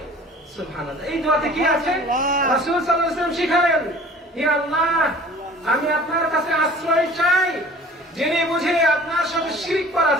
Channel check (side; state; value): both; normal; correlation 0.47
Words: সুবহানাল্লাহ। এই দোয়াতে কি আছে? রাসূল সাল্লাল্লাহু আলাইহি ওয়াসাল্লাম শিখালেন, হে আল্লাহ, আমি আপনার কাছে আশ্রয় চাই জেনে বুঝে আপনার সাথে শিরক করা